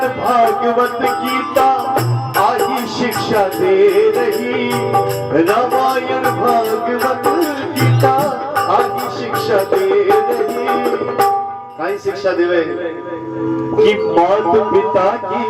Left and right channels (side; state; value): both; identical; correlation 1.00